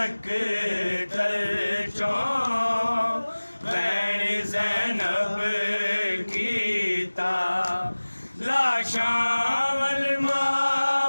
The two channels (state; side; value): inverted; both; correlation -1.00